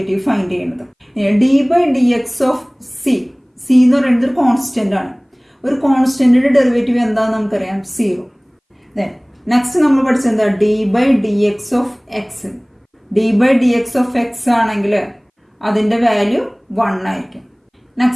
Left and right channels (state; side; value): identical; both; correlation 1.00